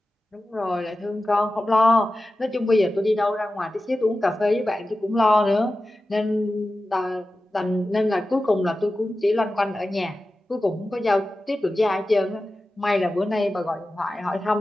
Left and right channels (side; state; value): both; normal; correlation 0.94